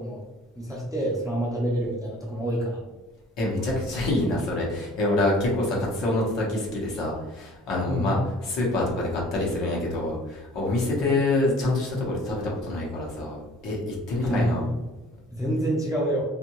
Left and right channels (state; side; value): normal; both; correlation 0.51